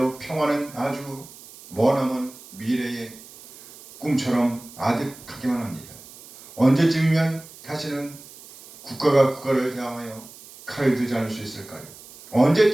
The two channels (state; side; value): noise; right; hiss, 19 dB below the sound